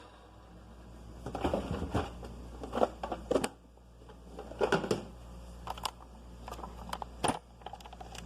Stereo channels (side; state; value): both; identical; correlation 1.00